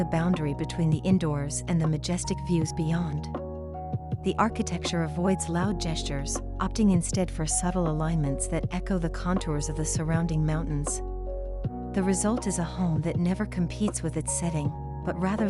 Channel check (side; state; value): both; identical; correlation 1.00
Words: boundary between the indoors and the majestic views beyond. The architecture avoids loud gestures, opting instead for subtle alignments that echo the contours of the surrounding mountains. The result is a home that never competes with its setting, but rather